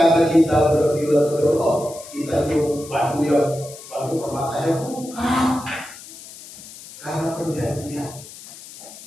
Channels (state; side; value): noise; left; hiss, 16 dB below the sound